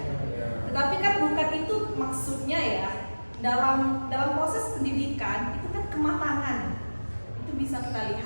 Tetapi kan bukan itu maksudnya ya. Dalam proses pendidikan itu kan kematangan. Itu bisa kita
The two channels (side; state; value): both; inverted; correlation -1.00